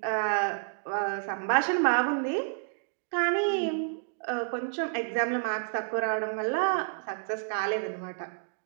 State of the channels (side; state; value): left; silent; digital silence